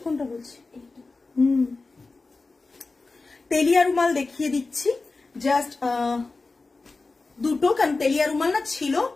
কোনটা বলছি? তেলিয়া রুমাল দেখিয়ে দিচ্ছি, জাস্ট দুটো, কারণ তেলিয়া রুমাল না ছিল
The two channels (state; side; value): quieter; right; 3.7 dB